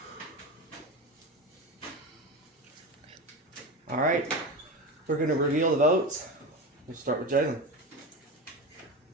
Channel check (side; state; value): both; normal; correlation 0.23